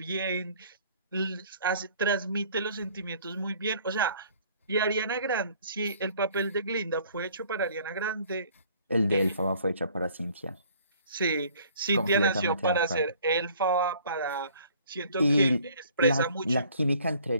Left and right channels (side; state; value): both; inverted; correlation -0.56